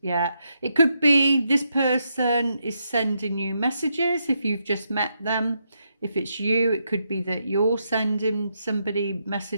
Yeah, it could be this person is sending you messages if you've just met them. If it's you, it could be that you're sending somebody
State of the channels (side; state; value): both; inverted; correlation -0.81